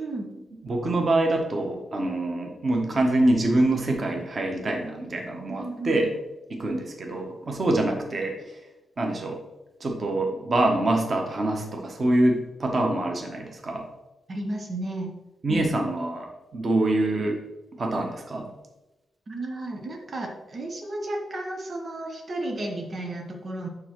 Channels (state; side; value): normal; both; correlation 0.89